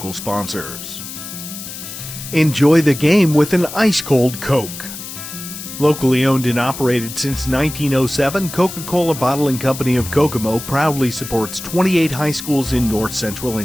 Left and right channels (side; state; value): left; noise; hiss, 10 dB below the sound